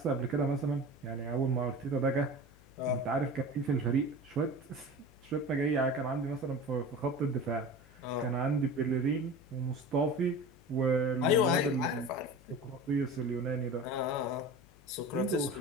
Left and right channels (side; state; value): left; noise; hum, 25 dB below the sound